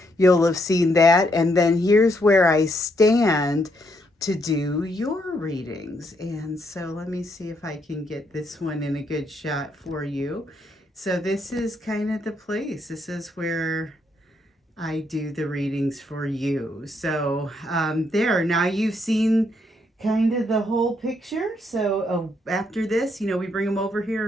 you'll have seen that. And then here's where I stand. to do your readings. And so let me see if I can get this one in a good shot for you. So this is kind of the place. This is where I do the readings for you. So there, now you've seen kind of the whole picture. So after this, we bring them over here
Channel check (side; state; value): both; normal; correlation 0.75